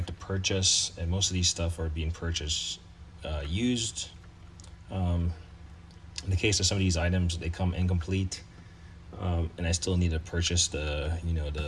to purchase, and most of these stuff are being purchased used. In the case of some of these items, they come incomplete, and I still need to purchase the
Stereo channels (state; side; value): identical; both; correlation 1.00